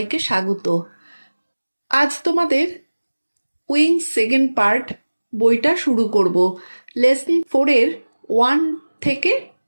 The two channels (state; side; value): inverted; both; correlation -1.00